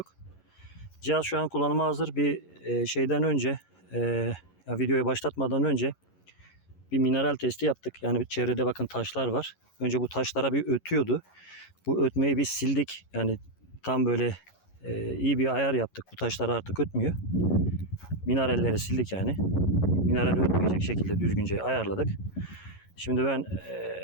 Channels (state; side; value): late; right; 11 ms